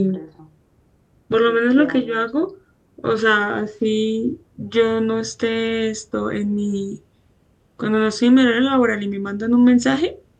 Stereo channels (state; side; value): identical; both; correlation 1.00